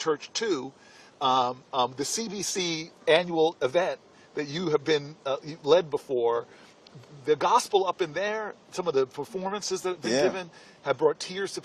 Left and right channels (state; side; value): identical; both; correlation 1.00